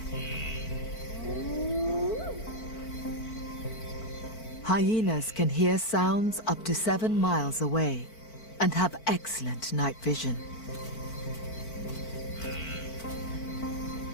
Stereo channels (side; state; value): right; late; 4.5 ms